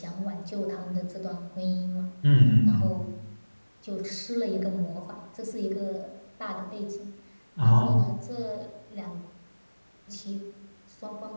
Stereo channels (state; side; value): inverted; both; correlation -1.00